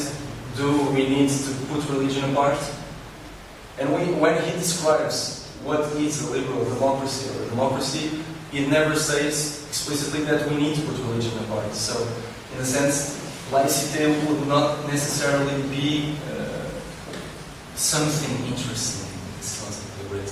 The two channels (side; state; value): both; identical; correlation 1.00